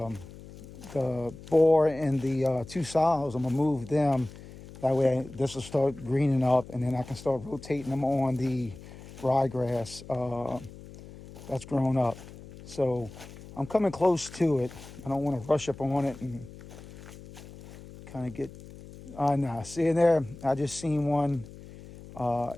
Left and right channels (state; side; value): noise; left; hum, 17 dB below the sound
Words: boar and the 2 sows. I'm gonna move them. That way, this will start greening up, and then I can start rotating them on the ryegrass that's grown up. So I'm coming close to it. I don't want to rush up on it and kind of get nah, see in there, I just seen one,